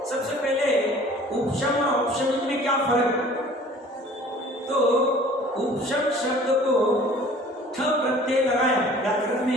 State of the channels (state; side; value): normal; both; correlation 0.49